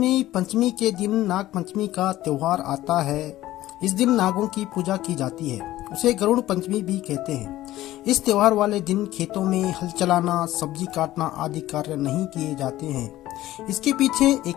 पंचमी के दिन नाग पंचमी का त्योहार आता है। इस दिन नागों की पूजा की जाती है। उसे गरुड़ पंचमी भी कहते हैं। इस त्योहार वाले दिन खेतों में हल चलाना, सब्जी काटना आदि कार्य नहीं किए जाते हैं। इसके पीछे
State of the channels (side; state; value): right; quieter; 15.3 dB